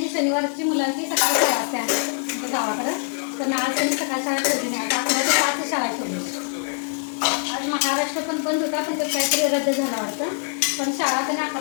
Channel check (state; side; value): silent; right; 55 dB below the other